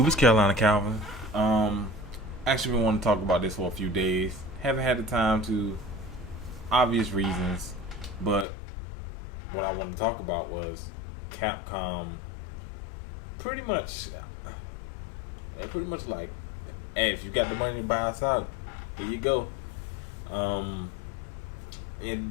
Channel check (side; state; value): right; drops out; at 8.5 s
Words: It's Carolina Calvin. Actually, been wanting to talk about this for a few days. Haven't had the time to, obvious reasons, but what I wanted to talk about was Capcom. Pretty much, pretty much like, hey, if you got the money to buy us out, here you go. Um,